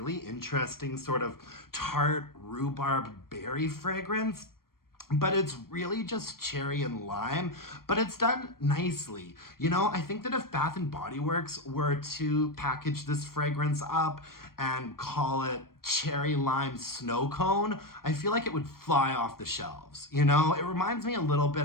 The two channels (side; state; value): right; late; 0.93 ms